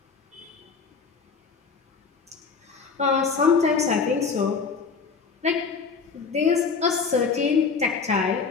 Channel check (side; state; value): right; quieter; 5.2 dB